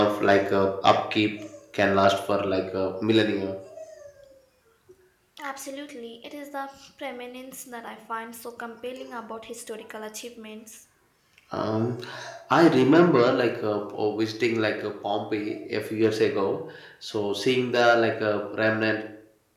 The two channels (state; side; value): identical; both; correlation 1.00